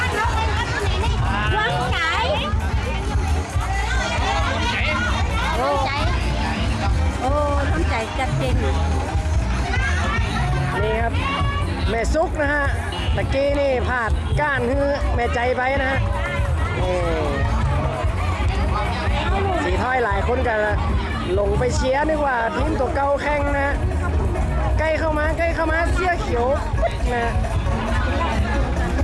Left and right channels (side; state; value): both; identical; correlation 1.00